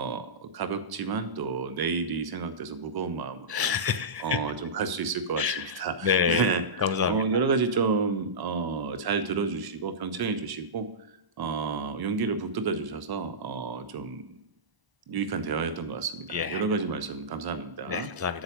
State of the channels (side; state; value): left; late; 1.0 ms